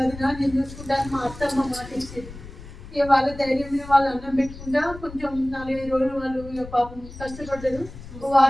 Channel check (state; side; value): noise; left; rumble, 15 dB below the sound